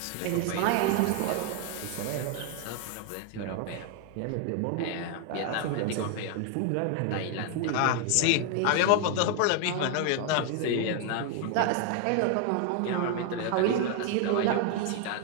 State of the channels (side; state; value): both; different; correlation 0.00